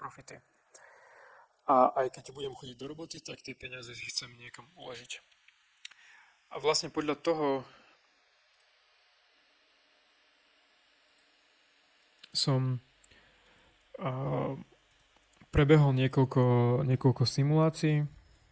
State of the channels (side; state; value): both; identical; correlation 1.00